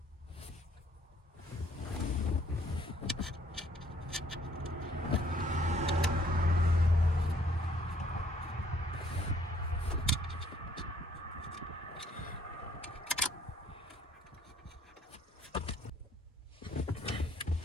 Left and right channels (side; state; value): both; normal; correlation 0.63